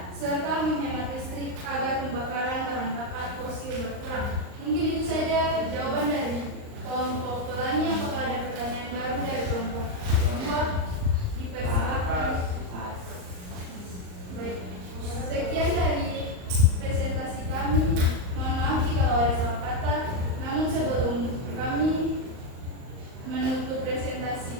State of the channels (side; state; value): left; late; 38 ms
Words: serta menghemat listrik agar pembakaran bahan bakar fosil berkurang. Mungkin itu saja jawaban dari kelompok Pelangi. Apakah ada pertanyaan baru dari kelompok kedua? Dipersilakan. Baik, sekian dari presentasi kami. Mohon maaf jika ada salah kata. Namun sebelum kami menutup